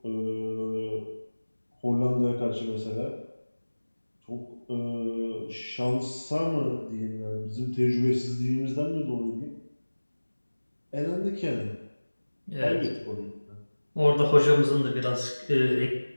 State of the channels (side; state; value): both; inverted; correlation -1.00